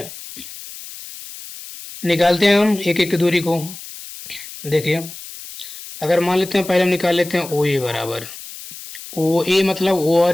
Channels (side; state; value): left; noise; hiss, 14 dB below the sound